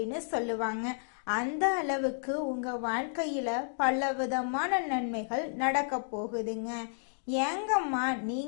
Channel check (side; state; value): right; silent; digital silence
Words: சொல்லுவாங்க. அந்த அளவுக்கு உங்க வாழ்க்கையில பல விதமான நன்மைகள் நடக்க போகுதுங்க. ஏங்கம்மா